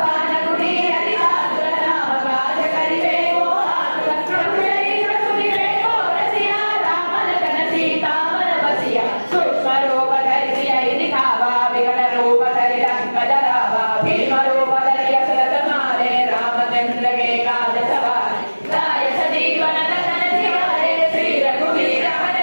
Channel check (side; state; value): both; inverted; correlation -1.00